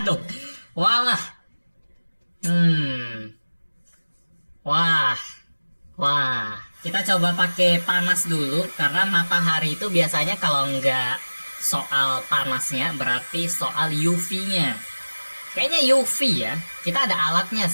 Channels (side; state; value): both; inverted; correlation -1.00